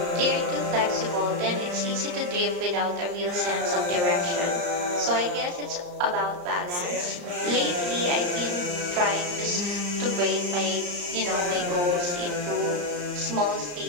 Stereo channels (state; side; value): late; left; 34 ms